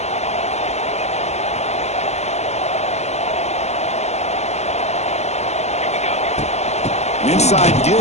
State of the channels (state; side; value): late; right; 0.32 ms